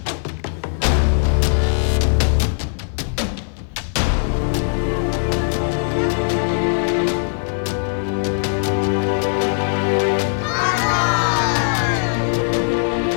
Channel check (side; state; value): right; silent; 58 dB below the other